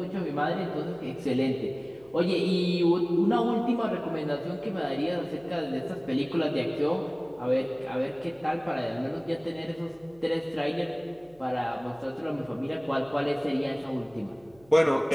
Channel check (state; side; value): noise; right; hum, 28 dB below the sound